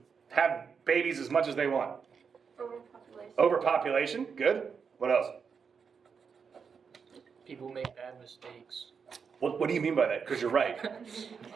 have babies as much as they want? Overpopulation. Overpopulation, good. What else? People make bad mistakes. What do you mean by that? Because you're right.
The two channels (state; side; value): quieter; left; 6.1 dB